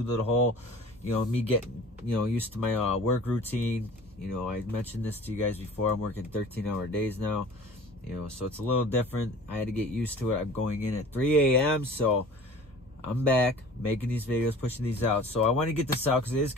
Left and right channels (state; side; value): normal; both; correlation 0.44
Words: to the whole, you know, me getting, you know, used to my work routine. You know, I mentioned this to you guys before. I'm working 13-hour days now. You know, so it's a little different. I had to get used to it. I'm going in at 3 a.m. So I'm back making these videos, pushing these out. So I want to get this out because it is